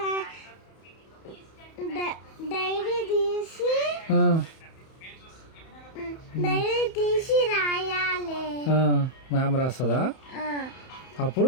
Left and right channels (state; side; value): late; right; 31 ms